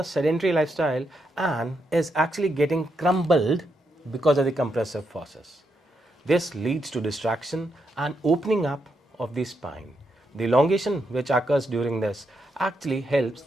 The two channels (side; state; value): both; normal; correlation 0.81